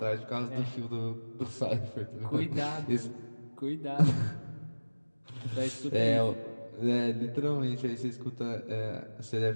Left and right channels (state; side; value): inverted; both; correlation -1.00